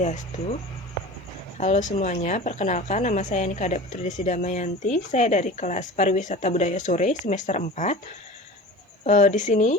Halo semuanya, perkenalkan nama saya Nika Putri Desi Damayanti. Saya dari kelas Pariwisata Budaya Sore semester 4. Di sini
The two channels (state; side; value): normal; both; correlation 0.36